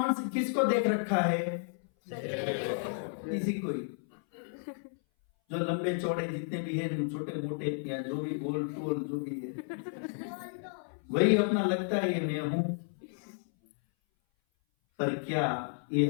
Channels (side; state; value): right; silent; 56 dB below the other